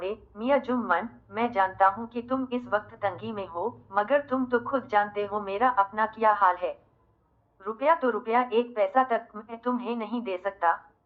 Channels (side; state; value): both; identical; correlation 1.00